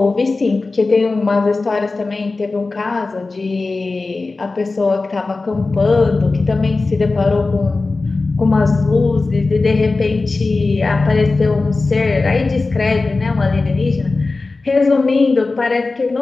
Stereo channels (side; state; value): right; quieter; 3.6 dB